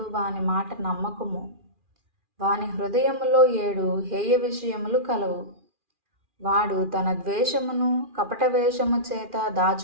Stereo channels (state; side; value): late; left; 2.4 ms